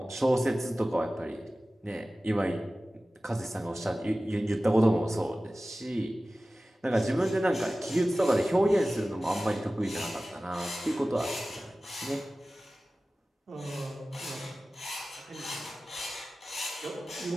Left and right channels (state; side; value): normal; both; correlation 0.96